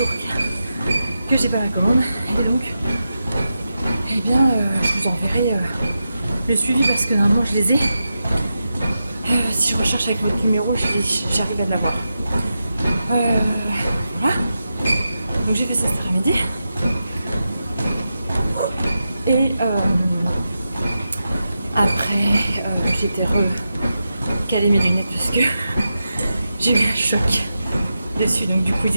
que j'ai pas la commande. Et donc, eh bien, je vous enverrai le suivi parce que normalement je les ai. Si je recherche avec votre numéro, j'arrive à l'avoir. Voilà. Donc j'ai fait ça cet après-midi. Et après, j'étais recalé mes lunettes parce que j'ai eu un choc dessus. Donc du coup, ils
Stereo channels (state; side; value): inverted; both; correlation -0.89